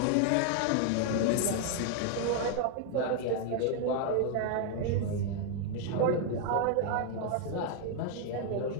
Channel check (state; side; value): different; both; correlation 0.00